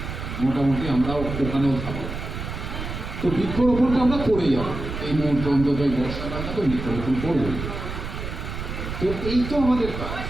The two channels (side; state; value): right; noise; rumble, 6 dB below the sound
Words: মোটামুটি আমরা ওখানেও থাকবো। তো বৃক্ষরোপণটা আমরা করে যাবো এই মুহূর্তে, অন্তত এই বর্ষাকালটা তো বৃক্ষরোপণ করবো। তো এই তো আমাদের কাজ,